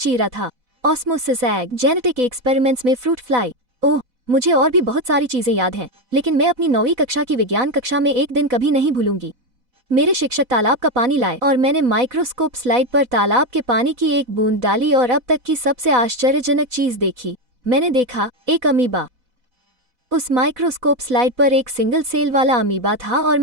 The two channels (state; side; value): late; left; 4.0 ms